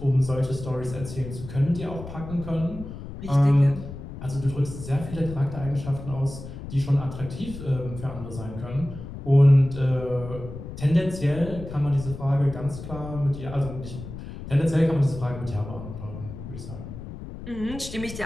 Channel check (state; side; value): noise; left; rumble, 11 dB below the sound